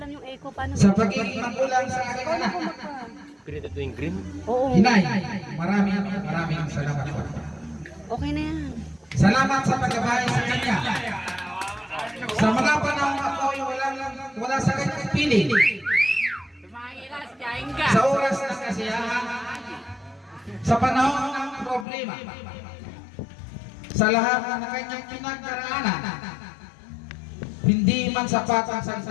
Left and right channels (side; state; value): right; drops out; at 21.9 s